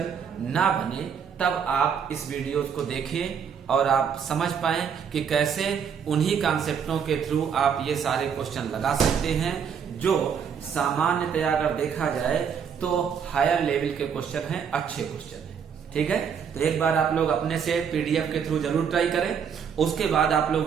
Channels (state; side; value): quieter; left; 7.2 dB